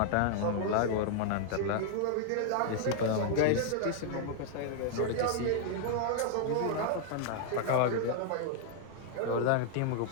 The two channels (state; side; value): different; both; correlation 0.00